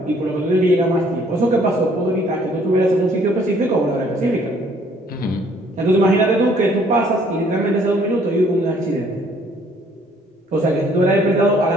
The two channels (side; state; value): both; normal; correlation 0.61